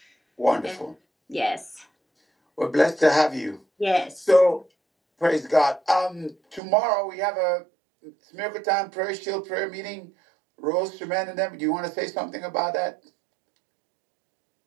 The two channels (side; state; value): left; drops out; at 6.6 s